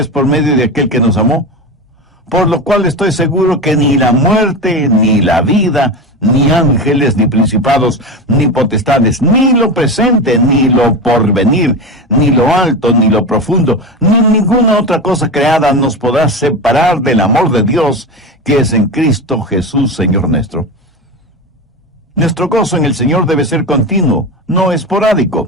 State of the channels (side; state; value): both; normal; correlation 0.22